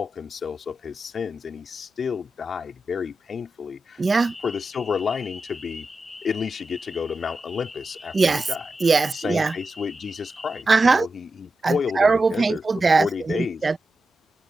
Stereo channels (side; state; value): both; normal; correlation 0.90